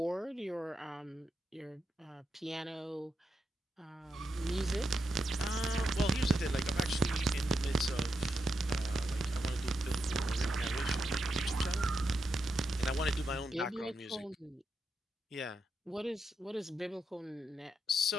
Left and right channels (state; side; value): normal; both; correlation 0.85